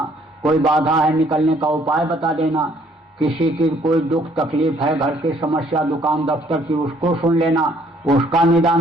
कोई बाधा है निकलने का उपाय बता देना, किसी की कोई दुख तकलीफ है, घर की समस्या दुकान दफ्तर की, उसको सुन लेना, उसका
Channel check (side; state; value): both; normal; correlation 0.63